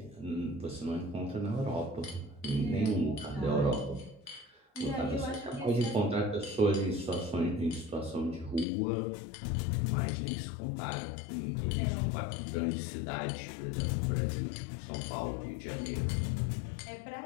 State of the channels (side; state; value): right; drops out; at 8.7 s